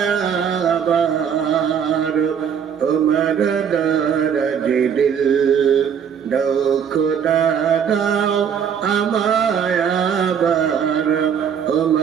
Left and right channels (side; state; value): left; quieter; 7.7 dB